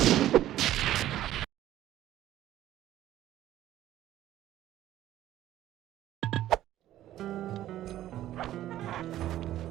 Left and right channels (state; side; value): quieter; left; 13.3 dB